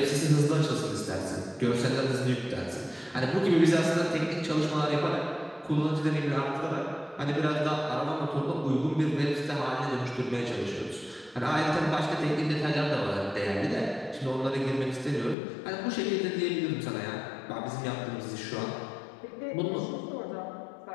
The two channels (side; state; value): right; drops out; at 15.4 s